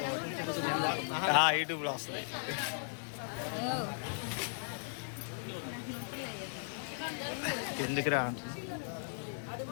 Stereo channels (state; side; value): silent; right; 53 dB below the other